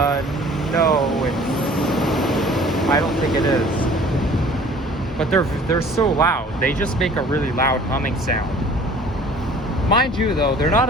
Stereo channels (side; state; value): both; normal; correlation 0.50